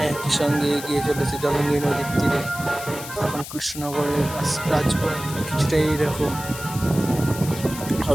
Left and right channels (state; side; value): noise; left; hiss, 11 dB below the sound